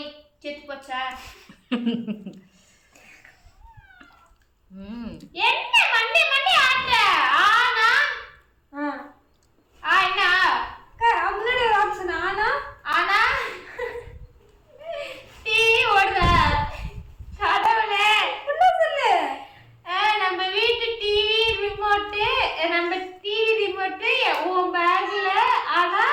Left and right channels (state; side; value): identical; both; correlation 1.00